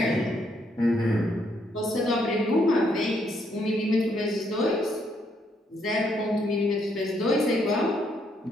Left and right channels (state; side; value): normal; both; correlation 0.73